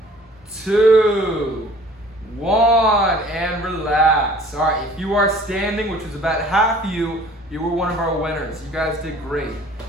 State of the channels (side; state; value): both; normal; correlation 0.51